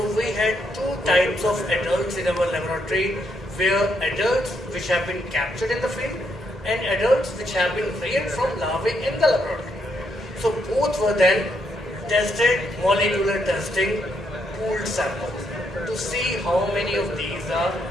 we had 2 types of adults in our laboratory, where adults which have been captured in the field and adults which have been reared from larvae in the laboratory. So both were then tested, molecular testing, pooled samples to see how many of these are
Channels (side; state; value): both; normal; correlation 0.76